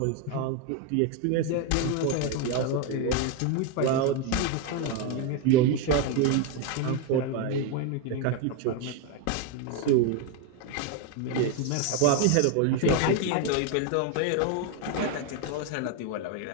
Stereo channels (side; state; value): both; different; correlation 0.02